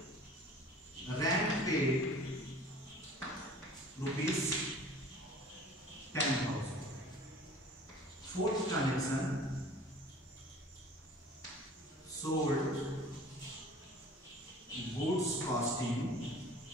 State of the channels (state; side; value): normal; both; correlation 0.47